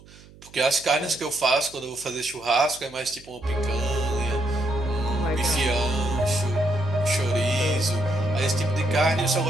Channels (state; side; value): noise; right; hum, 23 dB below the sound